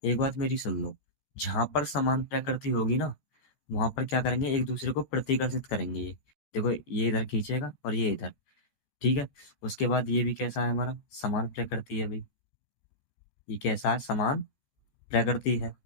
एक बात मेरी सुन लो। जहां पर समान प्रकृति होगी ना, वहां पर क्या करेंगे? एक दूसरे को प्रतिकर्षित करेंगे। ये देखो, ये इधर खींचेगा और ये इधर, ठीक है। उसके बाद ये भी कैसा है? हमारा समान प्रकृति है भाई। ये कैसा है? समान प्रकृति है।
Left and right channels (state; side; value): late; right; 14 ms